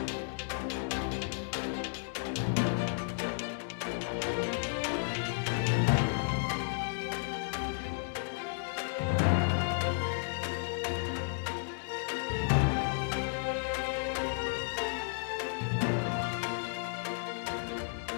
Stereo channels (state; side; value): silent; right; digital silence